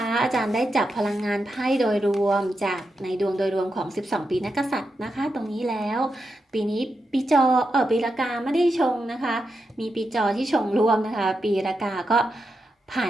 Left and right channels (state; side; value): normal; both; correlation 0.86